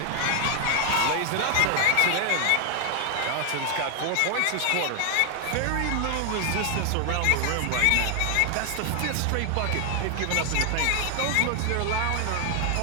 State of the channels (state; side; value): different; both; correlation 0.00